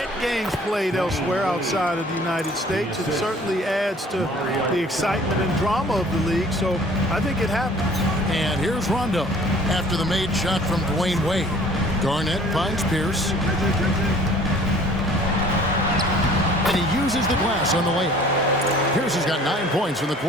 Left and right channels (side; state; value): both; normal; correlation 0.52